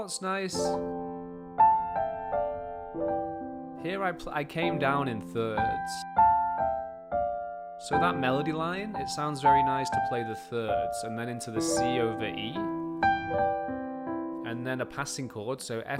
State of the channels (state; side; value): identical; both; correlation 1.00